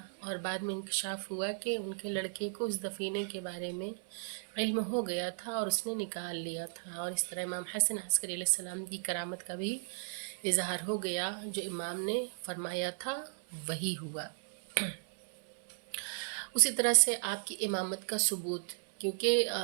اور بعد میں انکشاف ہوا کہ ان کے لڑکے کو اس دفینے کے بارے میں علم ہو گیا تھا، اور اس نے نکال لیا تھا. اور اس طرح امام حسن عسکری علیہ السلام کی کرامت کا بھی اظہار ہو گیا. جو امام نے فرمایا تھا وہی ہوا. اسی طرح سے آپ کی امامت کا ثبوت، کیونکہ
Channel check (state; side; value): silent; left; 54 dB below the other